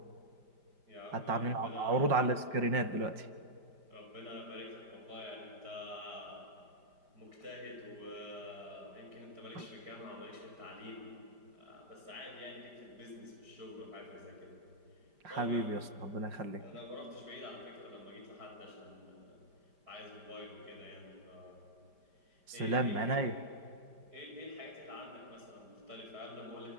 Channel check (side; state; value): left; late; 5.0 ms